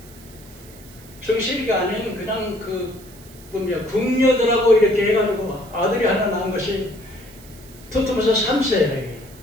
정실이가 아닌 그냥 궁녀들하고 이렇게 해가지고 아들이 하나 낳은 것이 투트모세 3세예요.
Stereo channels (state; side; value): noise; right; hiss, 22 dB below the sound